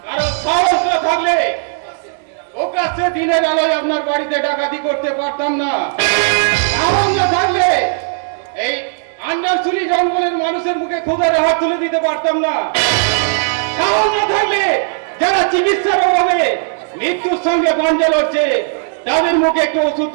কারণ সাহস না থাকলে ওকাছে দিনের আলোয় আপনার বাড়িতে ডাকাতি করতে পারতাম না। সাহস না থাকলে এই আন্ডারসুলি জঙ্গলের মানুষের মুখে ক্ষুধার হাত তুলে দিতে পারতাম না। সাহস না থাকলে যারা চিকিৎসার অভাবে মৃত্যুর সঙ্গে গঞ্জে লড়ছে তাদের মুখে একটু ওষুধ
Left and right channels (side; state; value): left; silent; digital silence